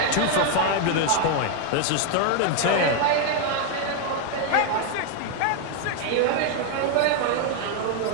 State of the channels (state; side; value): different; both; correlation 0.00